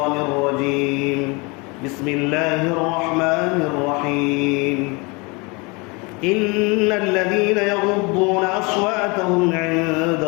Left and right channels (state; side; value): quieter; right; 28.2 dB